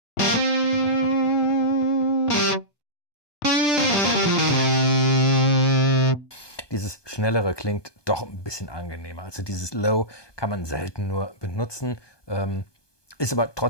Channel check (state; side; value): late; right; 1.2 ms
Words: Dieses Schnellere klingt doch ein bisschen angenehmer. Also dieses Low kann man selten nur benutzen. Ist aber